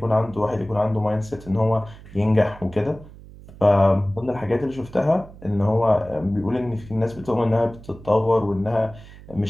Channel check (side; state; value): right; noise; hum, 19 dB below the sound